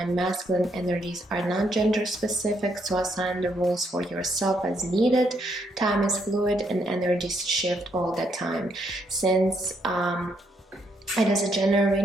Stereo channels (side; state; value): both; normal; correlation 0.74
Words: Masculine energies are not gender specific, so assign the rules for yourself as needed. Time is fluid and energies shift all the time. Since it is a general